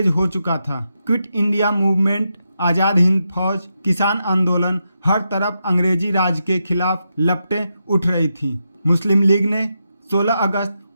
हो चुका था। Quit India movement, Azad Hind फौज, किसान आंदोलन, हर तरफ अंग्रेजी राज के खिलाफ लपटें उठ रही थी। मुस्लिम लीग ने 16 अगस्त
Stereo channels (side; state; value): both; inverted; correlation -0.85